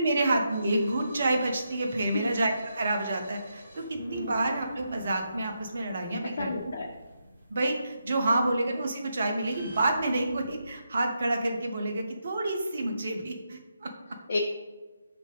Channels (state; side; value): inverted; both; correlation -0.83